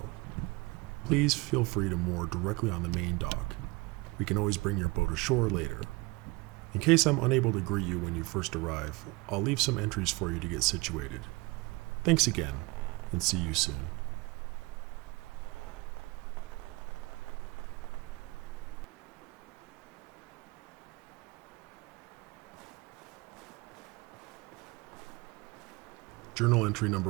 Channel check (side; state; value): left; quieter; 24.4 dB